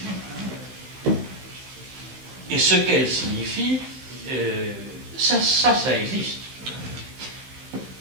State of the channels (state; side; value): late; left; 15 ms